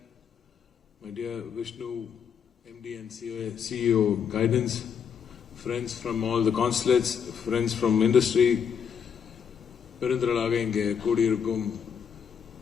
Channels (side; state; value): right; quieter; 7.3 dB